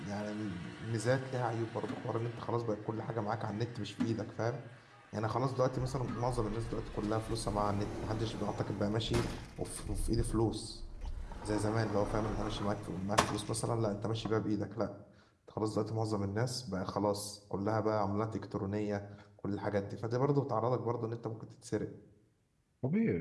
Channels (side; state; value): both; identical; correlation 1.00